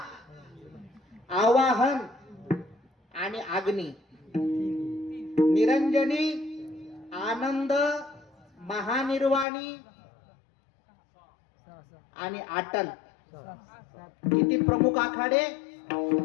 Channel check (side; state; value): right; drops out; at 9.5 s